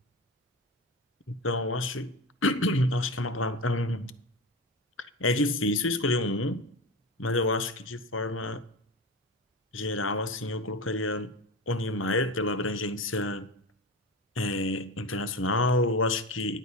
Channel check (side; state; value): both; normal; correlation 0.25